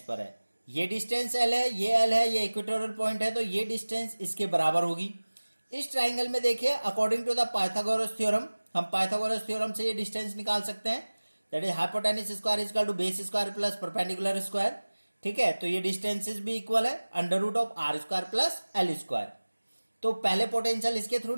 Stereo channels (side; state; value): both; inverted; correlation -1.00